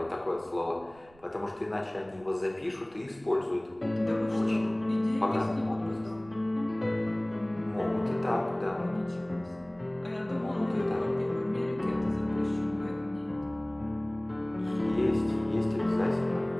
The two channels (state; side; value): noise; right; rumble, 27 dB below the sound